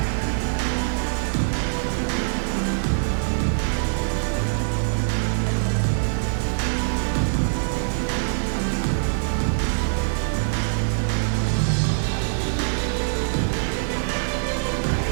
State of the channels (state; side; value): silent; left; digital silence